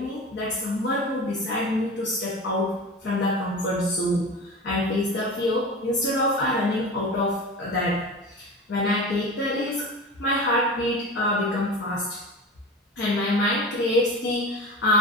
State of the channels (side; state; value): both; normal; correlation 0.32